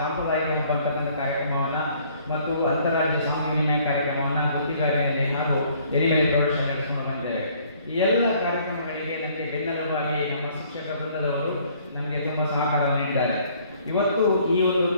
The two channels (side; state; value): both; inverted; correlation -0.60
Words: ಸಂಪರ್ಕದ ಕಾರ್ಯಕ್ರಮವನ್ನು ಮತ್ತು ಅಂತಾರಾಜ್ಯ ಸಾಂಸ್ಕೃತಿಕ ವಿನಿಮಯ ಕಾರ್ಯಕ್ರಮವನ್ನು ಗುತ್ತಿಗಾರಿಯಲ್ಲಿ ಹಾಗೂ ಎಲಿಮೇಲೆ ಪ್ರೌಢಶಾಲೆ ನಡೆಸಿಕೊಂಡು ಬಂದಿದ್ದೇವೆ. ಈ ಎಲ್ಲ ಕಾರ್ಯಕ್ರಮಗಳಿಗೆ ನನಗೆ ಬೆನ್ನೆಲುಬಾಗಿ ನಮ್ಮ ಶಿಕ್ಷಕ ವೃಂದದವರು ನಮಗೆ ತುಂಬ ಸಹಕಾರ ನೀಡಿದ್ದಾರೆ. ಇವತ್ತು ಈ ಒಂದು